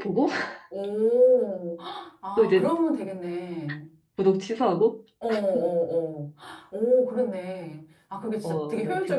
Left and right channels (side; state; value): both; identical; correlation 1.00